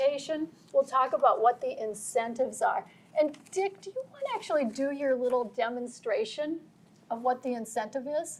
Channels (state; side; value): identical; both; correlation 1.00